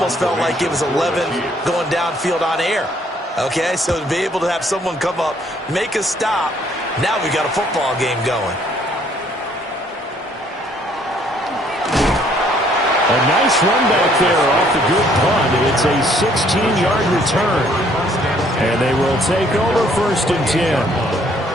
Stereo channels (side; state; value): both; normal; correlation 0.64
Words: felt like it was 11 going downfield on air. Okay, so to be able to have someone come up, make a stop, now we got a football game going. A nice run back there off the good punt. It's a 16-yard return. And they will take over 1st and 10.